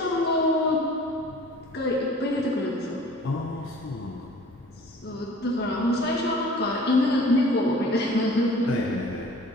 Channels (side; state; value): both; normal; correlation 0.47